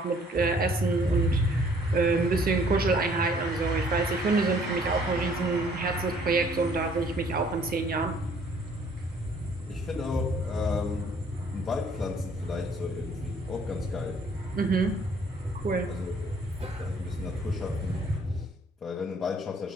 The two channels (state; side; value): normal; both; correlation 0.60